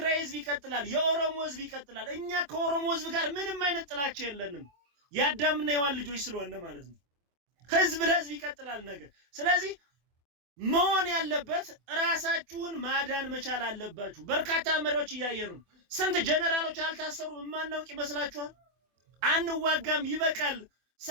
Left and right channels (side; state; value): left; late; 25 ms